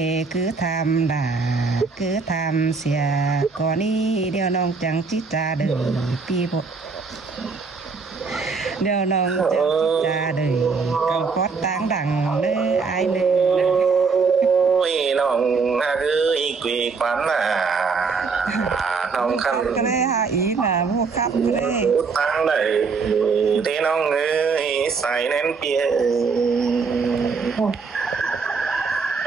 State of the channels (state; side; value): quieter; left; 4.8 dB